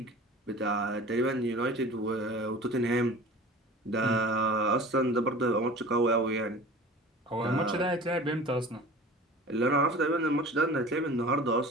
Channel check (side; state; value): both; normal; correlation 0.40